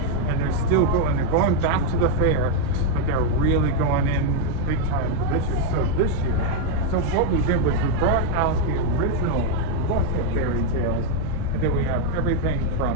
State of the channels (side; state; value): both; different; correlation 0.01